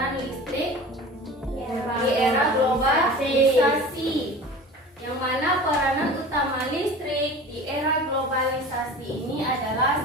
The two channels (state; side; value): normal; both; correlation 0.38